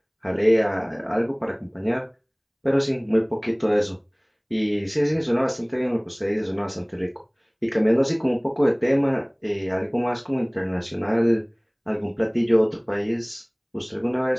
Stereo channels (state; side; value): identical; both; correlation 1.00